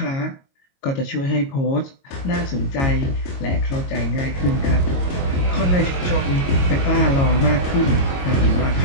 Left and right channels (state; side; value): late; right; 22 ms